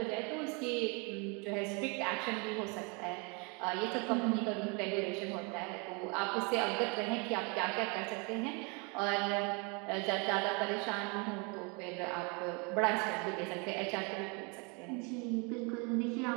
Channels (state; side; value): quieter; left; 32.1 dB